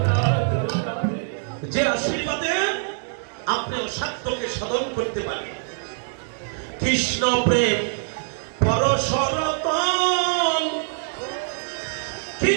যে আশীর্বাদে আপনি অসাধ্যকে সাধন করতে পারেন। কৃষ্ণ প্রেম পরশরতন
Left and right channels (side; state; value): left; silent; digital silence